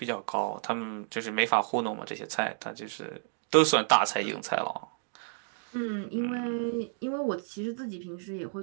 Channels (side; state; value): left; silent; digital silence